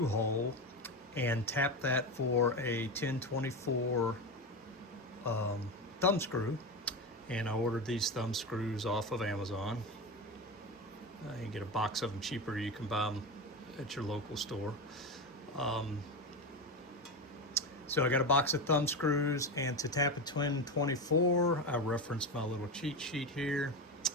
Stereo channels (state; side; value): normal; both; correlation 0.19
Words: hole and tap that for a 1024 thumb screw. And I ordered these thumb screws off of Amazon. You can get a box of them cheaper. You can buy them at your local store. So I got a box of thumb screws, and to tap a 1024, I referenced my little cheat sheet here.